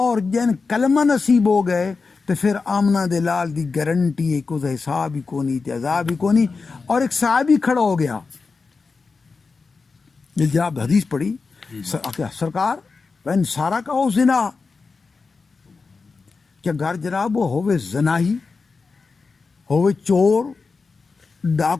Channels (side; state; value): right; quieter; 4.5 dB